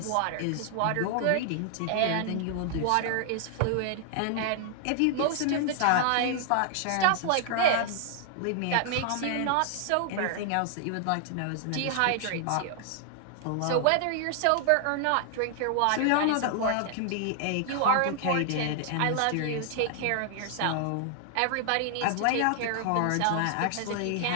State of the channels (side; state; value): both; different; correlation 0.00